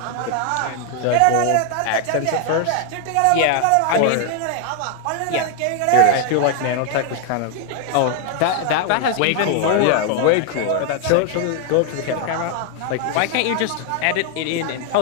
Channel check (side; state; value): both; different; correlation 0.00